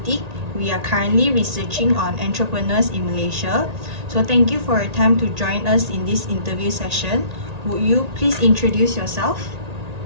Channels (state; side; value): late; left; 1.8 ms